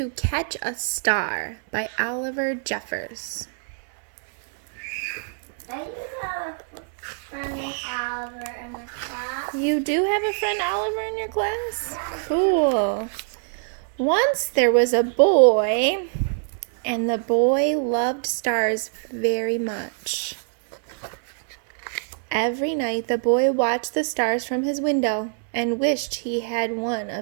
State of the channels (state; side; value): silent; left; 62 dB below the other